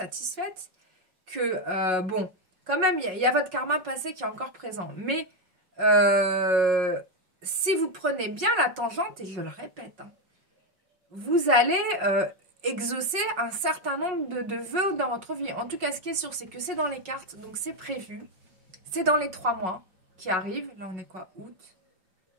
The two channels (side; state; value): left; late; 5.3 ms